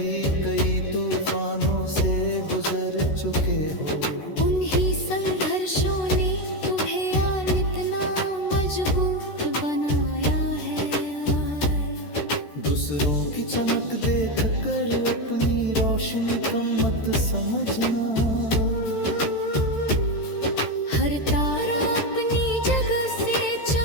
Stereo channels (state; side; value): late; right; 13 ms